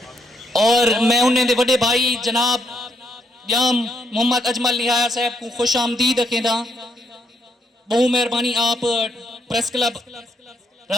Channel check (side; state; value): both; normal; correlation 0.75